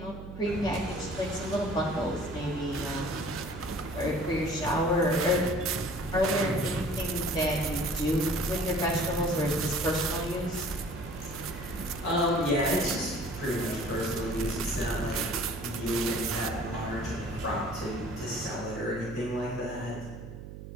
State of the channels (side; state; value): right; noise; hum, 12 dB below the sound